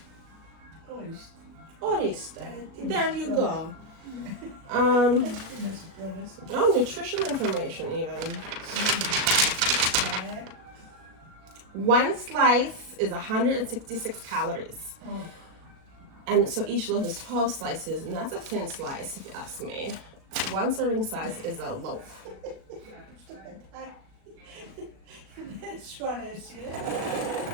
Oriste. There you go. Oh, nutrition information even. 1 slice is 166 calories. And so each loaf is 12 slices, and that's a thin slice if you ask me. 1 serving size is a loaf.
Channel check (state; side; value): late; left; 37 ms